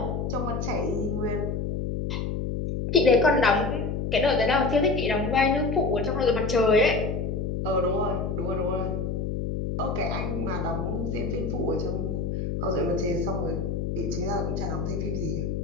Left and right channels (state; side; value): noise; left; hum, 2 dB below the sound